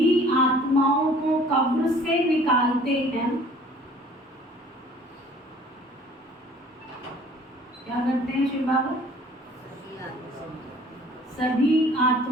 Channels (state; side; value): normal; both; correlation 0.53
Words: आत्माओं को कब्र से निकालते हैं। क्या करते हैं शिव बाबा? सभी